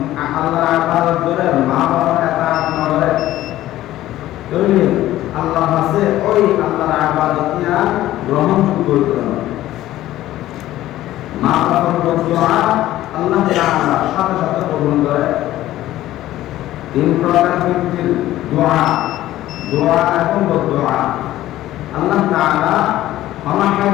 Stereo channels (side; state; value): right; quieter; 14.5 dB